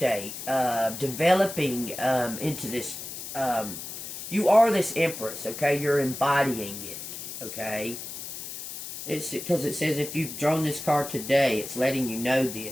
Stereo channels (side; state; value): left; noise; hiss, 9 dB below the sound